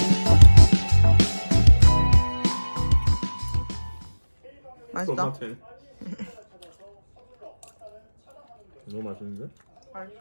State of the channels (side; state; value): both; inverted; correlation -1.00